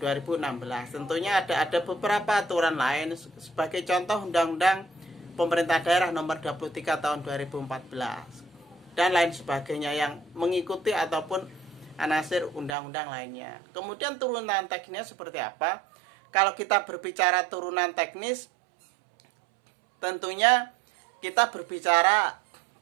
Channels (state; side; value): drops out; left; at 12.8 s